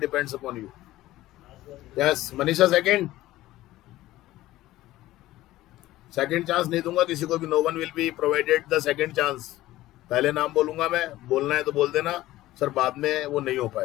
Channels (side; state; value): right; quieter; 16.1 dB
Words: upon you. Yes, Manisha second chance नहीं दूंगा किसी को भी. No one will be provided the second chance. पहले नाम बोलूंगा मैं, बोलना है तो बोल देना सर, बाद में वो नहीं हो